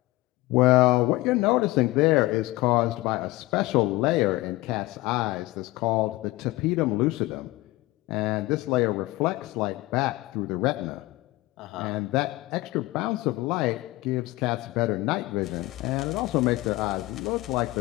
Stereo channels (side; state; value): right; quieter; 19.4 dB